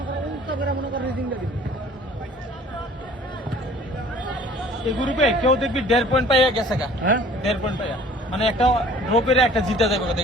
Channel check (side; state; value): both; normal; correlation 0.51